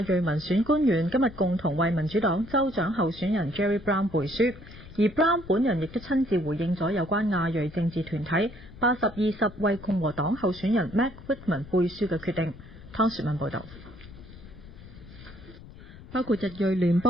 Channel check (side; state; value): left; noise; rumble, 18 dB below the sound